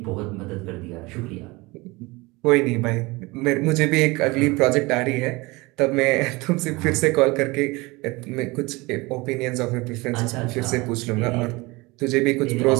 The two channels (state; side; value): quieter; left; 23.5 dB